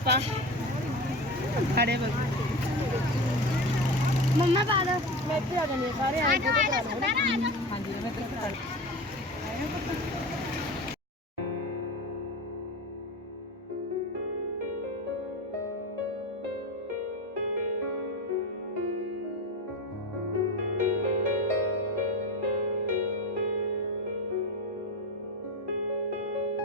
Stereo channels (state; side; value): normal; both; correlation 0.27